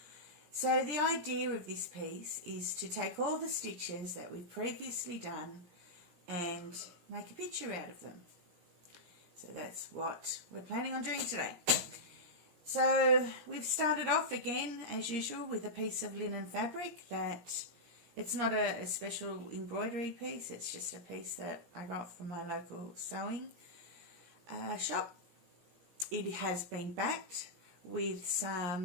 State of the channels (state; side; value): late; left; 17 ms